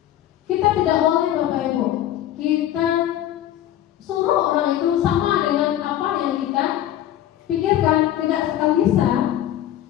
kita tidak boleh Bapak Ibu, kita suruh orang itu sama dengan apa yang kita pikirkan, tidak sekali bisa.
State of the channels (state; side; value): quieter; right; 12.2 dB